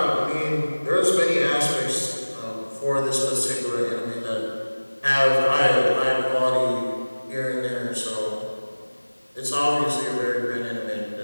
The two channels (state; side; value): inverted; both; correlation -1.00